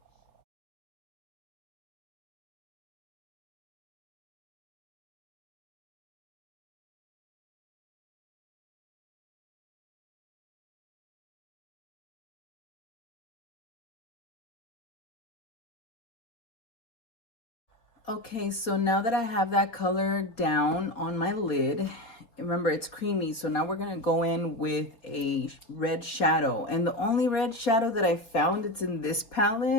Okay, so now that I have that color down on my lid, remember it's creamy, so now we're gonna go in with a red shadow. And the only red shadow that I found, it's in this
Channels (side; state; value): right; late; 4.2 ms